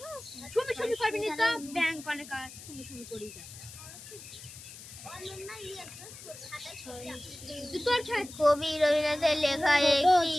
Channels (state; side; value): noise; left; hiss, 15 dB below the sound